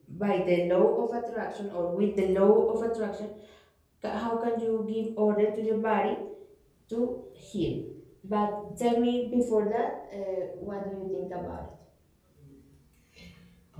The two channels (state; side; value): identical; both; correlation 1.00